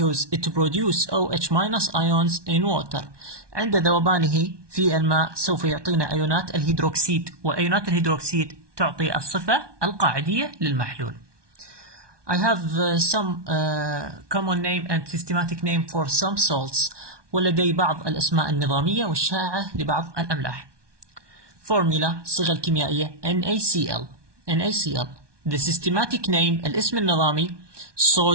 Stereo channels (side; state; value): left; late; 1.2 ms